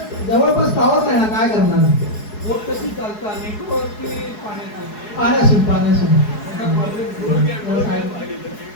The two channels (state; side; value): late; right; 4.7 ms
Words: जवळपास टॉवर नाही ना, काय करणार? कशी चालतं नेटवर्क पाण्यासून